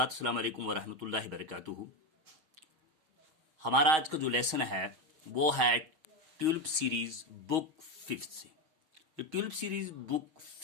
अस्सलाम वालेकुम वरहमतुल्लाहि वबरकातुहू। हमारा आज का जो लेसन है वो है ट्यूलिप सीरीज बुक फिफ्थ से। ये ट्यूलिप सीरीज बुक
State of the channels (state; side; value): late; left; 6.3 ms